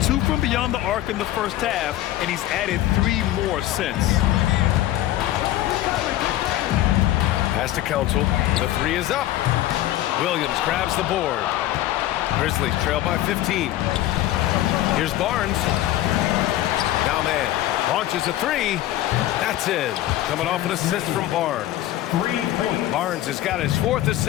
2 from beyond the arc in the first half, and he's added 3 more since. Pass to Council. The 3 is up. Williams grabs the board. Grizzlies trail by 15. Here's Barnes. Now man. Launches a 3. That's in. Coming off an assist from Barnes. 3 points. Barnes has got his 4th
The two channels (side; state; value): right; quieter; 14.2 dB